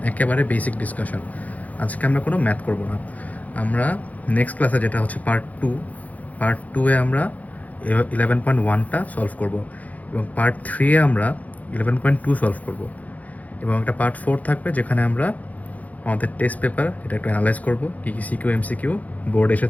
একেবারে বেসিক ডিসকাশন। আজকে আমরা কোনো ম্যাথ করব না। আমরা নেক্সট ক্লাসে, যেটা হচ্ছে পার্ট টুয়ে আমরা 11.1টা সলভ করব, এবং পার্ট 3-এ আমরা 11.2 সলভ করব, এবং একটা পার্ট 4 থাকবে যেখানে আমরা আমাদের টেস্ট পেপার এটা একটু অ্যানালাইজ করবো, কী কী সিকিউ এমসিকিউ বোর্ড এসে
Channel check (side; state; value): right; late; 0.076 ms